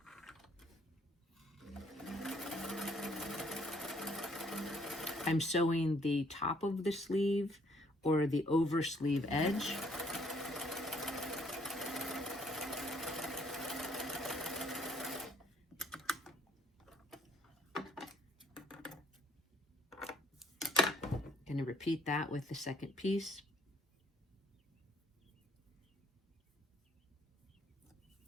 I'm sewing the top of the sleeve or the over sleeve edge. Going to repeat that with the second piece.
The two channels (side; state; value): both; normal; correlation 0.65